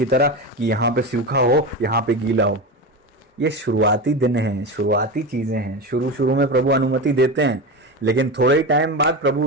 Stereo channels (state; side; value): normal; both; correlation 0.22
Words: तरह कि यहां पे सूखा हो, यहां पे गीला हो। ये शुरुआती दिन हैं, शुरुआती चीजें हैं। शुरू शुरू में प्रभु अनुमति देते हैं, लेकिन थोड़े ही टाइम बाद प्रभु